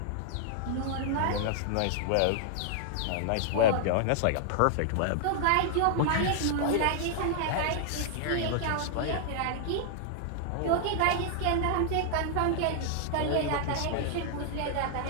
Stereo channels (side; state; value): both; different; correlation -0.01